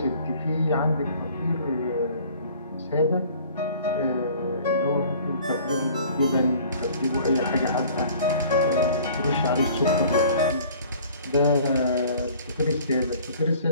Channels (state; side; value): inverted; both; correlation -0.50